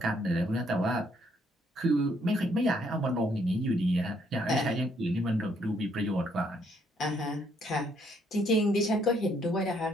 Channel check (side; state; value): both; normal; correlation 0.69